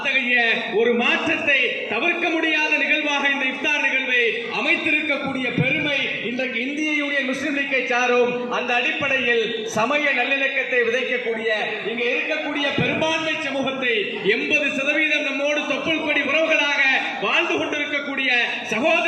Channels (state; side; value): identical; both; correlation 1.00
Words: ஒரு மாற்றத்தை தவிர்க்க முடியாத நிகழ்வாக இந்த இஃப்தார் நிகழ்வை அமைத்திருக்கக்கூடிய பெருமை இன்றைக்கு இந்திய யூனியன் முஸ்லிம் லீக்கை சாரும். அந்த அடிப்படையில் சமய நல்லிணக்கத்தை விதைக்கக்கூடிய இங்க இருக்கக்கூடிய பெரும்பான்மை சமூகத்தை 80% நம்மோடு தொப்புள் கொடி உறவுகளாக வாழ்ந்து கொண்டிருக்கக்கூடிய